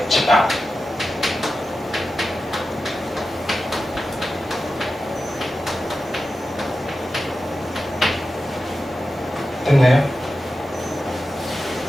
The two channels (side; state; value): both; normal; correlation 0.92